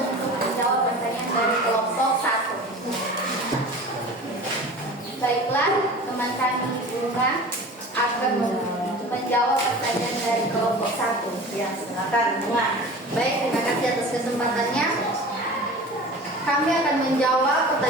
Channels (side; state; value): both; normal; correlation 0.38